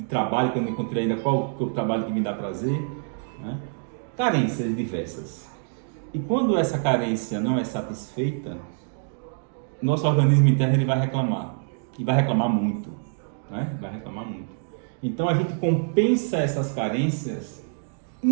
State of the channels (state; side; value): silent; left; digital silence